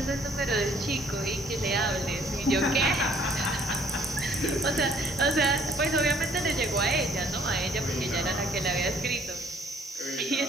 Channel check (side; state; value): both; normal; correlation 0.60